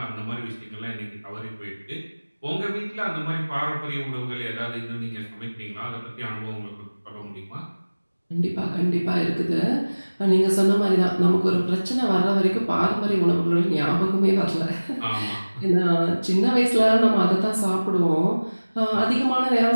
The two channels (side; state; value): both; inverted; correlation -1.00